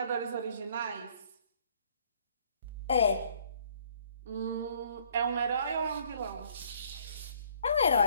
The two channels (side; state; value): both; inverted; correlation -0.61